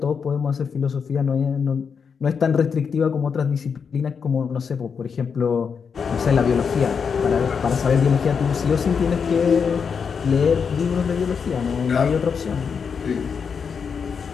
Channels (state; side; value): quieter; right; 6.2 dB